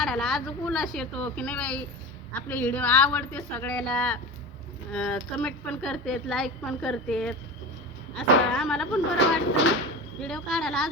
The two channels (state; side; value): normal; both; correlation 0.29